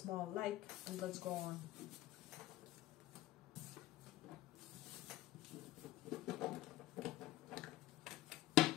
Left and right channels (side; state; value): right; quieter; 16.2 dB